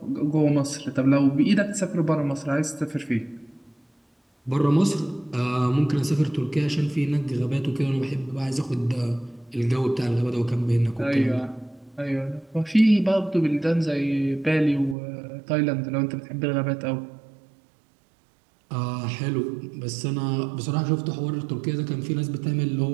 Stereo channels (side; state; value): left; drops out; at 15.0 s